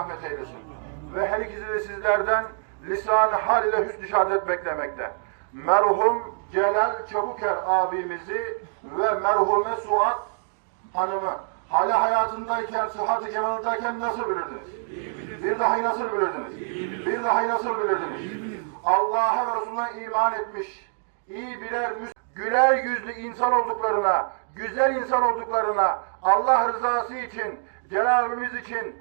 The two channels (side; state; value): left; silent; digital silence